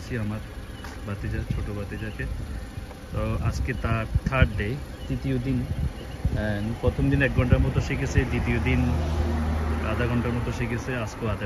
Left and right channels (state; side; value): identical; both; correlation 1.00